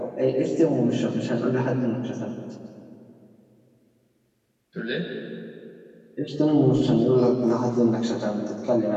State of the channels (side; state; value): both; identical; correlation 1.00